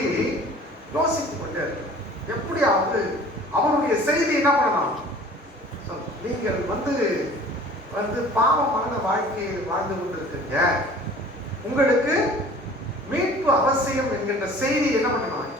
யோசித்துக் கொண்டே இருக்கு. எப்படியாவது அவருடைய செய்தி என்ன பண்ணலாம்? நீங்கள் வந்து பாவமான வாழ்க்கையை வாழ்ந்து கொண்டிருக்கீங்க, உங்களுக்கு மீட்பு அவசியம் என்கின்ற செய்தி என்ன பண்ணலாம்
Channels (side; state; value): both; normal; correlation 0.47